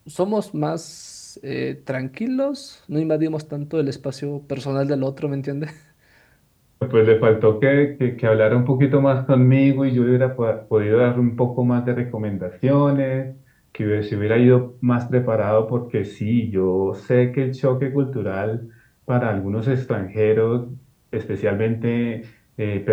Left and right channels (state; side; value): identical; both; correlation 1.00